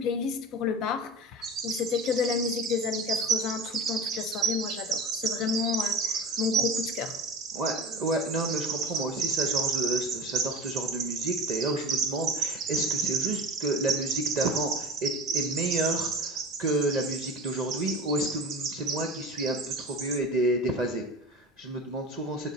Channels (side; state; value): both; normal; correlation 0.33